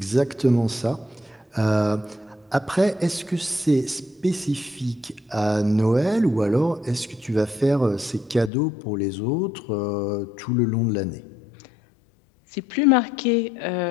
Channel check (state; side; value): drops out; right; at 8.5 s